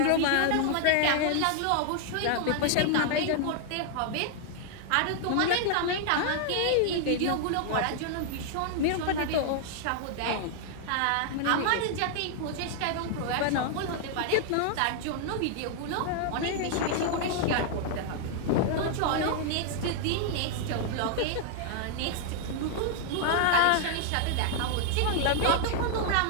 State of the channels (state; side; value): different; both; correlation 0.00